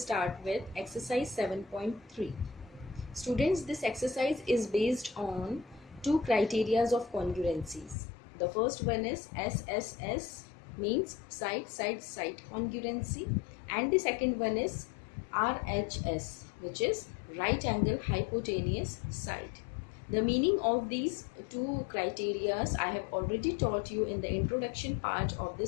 with exercise 7.3. Students, this exercise is based on two criterias of congruencies. The first one is SSS, means side congruency, and the second one is RHS, which is right angle hypotenuse side. The meaning of these two criteria I have already taught you in the introduction part of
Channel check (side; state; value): right; drops out; at 8.0 s